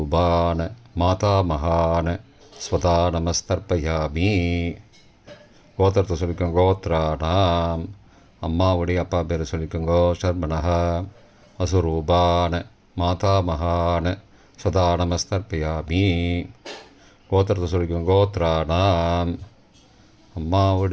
மாதாமகான ஸ்வதா நமஸ்தர்ப்பயாமி. கோத்திரத்தை சொல்லிக்கோங்க கோத்ரானாம். அம்மாவுடைய அப்பா பேரை சொல்லிக்கோங்கோ ஷர்மனஹ. வசுரூபான மாதாமகான ஸ்வதா நமஸ்தர்ப்பயாமி. கோத்திரத்தை சொல்லிக்கோங்க கோத்ரானாம்.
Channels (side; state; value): both; identical; correlation 1.00